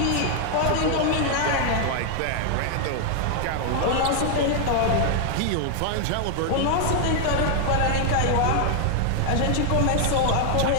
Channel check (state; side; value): different; both; correlation 0.00